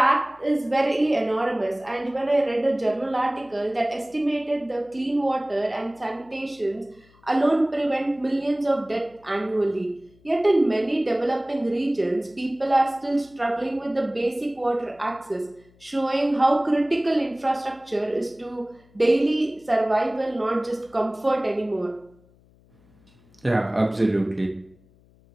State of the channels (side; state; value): left; noise; hum, 30 dB below the sound